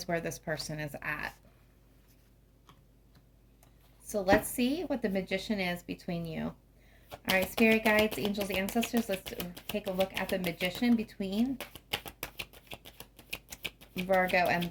where this person is at. So let's see what the Magician is between you. All right, spirit guides, angels, ancestors, let's take a look at the Magician between Virgo and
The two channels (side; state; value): both; identical; correlation 1.00